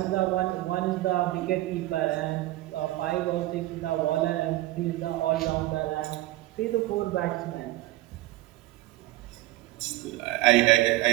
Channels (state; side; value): quieter; left; 17.1 dB